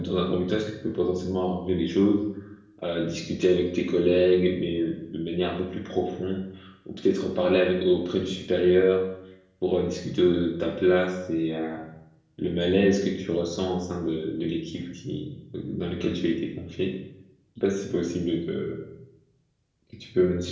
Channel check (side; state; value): both; identical; correlation 1.00